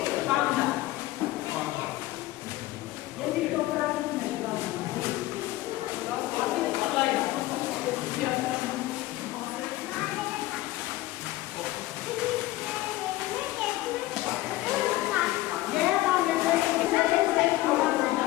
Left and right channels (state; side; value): quieter; right; 17.2 dB